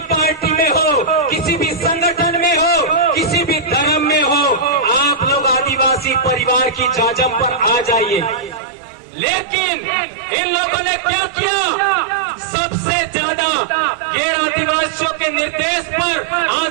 पार्टी में हो, किसी भी संगठन में हो, किसी भी धर्म में हो, आप लोग आदिवासी परिवार की जाजम पर आ जाइए। लेकिन इन लोगों ने क्या किया? सबसे ज्यादा गैर आदिवासियों के निर्देश पर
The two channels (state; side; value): drops out; left; at 8.6 s